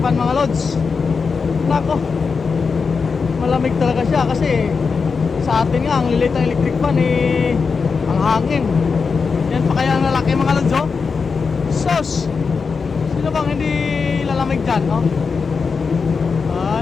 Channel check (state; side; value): quieter; right; 5.2 dB